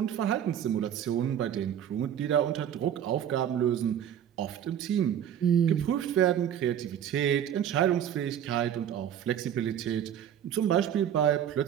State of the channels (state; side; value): quieter; left; 9.7 dB